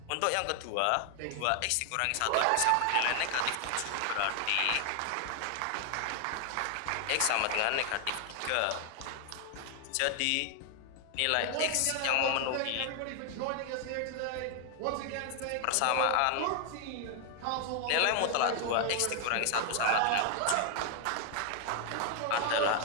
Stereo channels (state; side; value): different; both; correlation 0.00